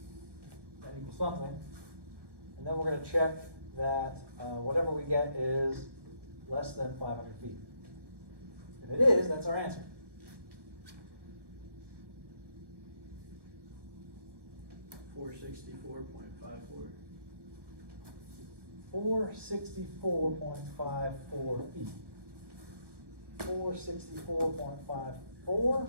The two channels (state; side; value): late; left; 1.2 ms